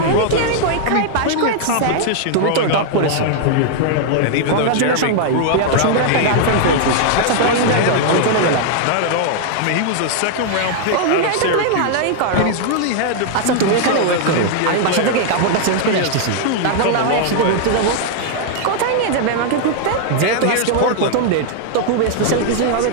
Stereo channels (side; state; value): both; different; correlation 0.00